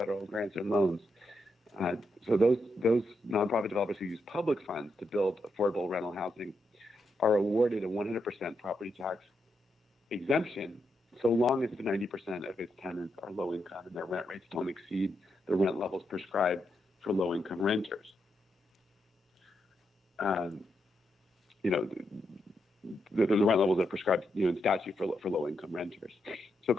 grants and loans, so those nonprofit developers who use public funds to build affordable rental housing are awarded a 100% property tax exemption so long as the 90% of its tenants are low income and their rent rates don't exceed the rent levels prescribed for low income renters. The rent levels that are prescribed in statute for low income renters. So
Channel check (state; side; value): normal; both; correlation 0.83